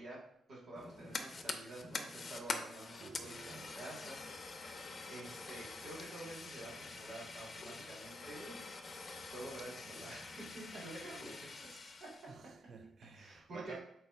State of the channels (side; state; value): both; normal; correlation 0.82